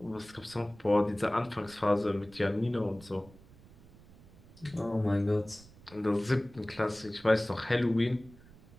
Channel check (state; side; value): noise; right; rumble, 23 dB below the sound